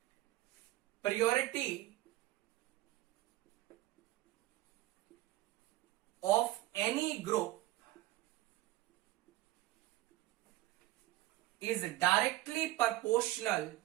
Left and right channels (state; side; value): quieter; left; 16.7 dB